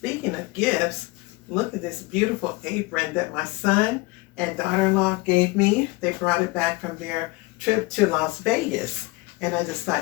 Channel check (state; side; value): quieter; right; 23.7 dB